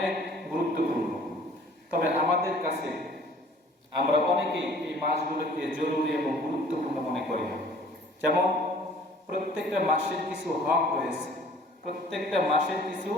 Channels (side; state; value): both; normal; correlation 0.52